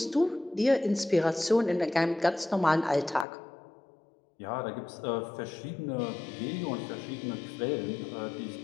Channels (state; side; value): drops out; right; at 3.2 s